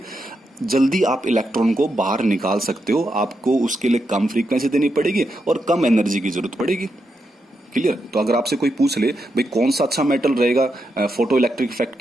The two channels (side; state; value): both; normal; correlation 0.84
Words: जल्दी आप इलेक्ट्रॉन को बाहर निकाल सकते हो। आपको उसके लिए कम फ्रीक्वेंसी देनी पड़ेगी और कम एनर्जी की जरूरत पड़ेगी, क्लियर। तो अगर आपसे कोई पूछ ले भाई कौन सा अच्छा मेटल रहेगा फोटो इलेक्ट्रिक इफेक्ट